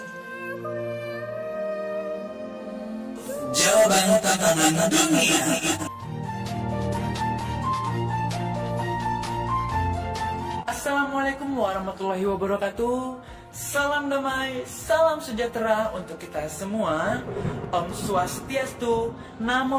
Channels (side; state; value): both; identical; correlation 1.00